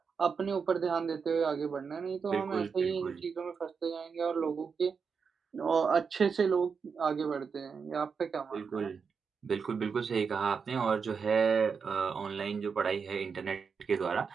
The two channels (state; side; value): quieter; left; 5.8 dB